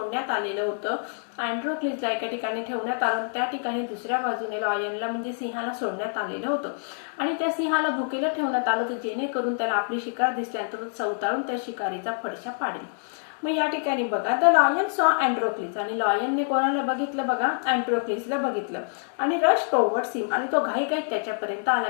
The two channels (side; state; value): right; silent; digital silence